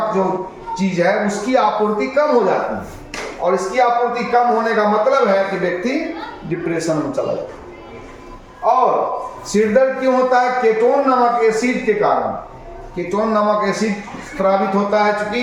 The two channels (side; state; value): both; identical; correlation 1.00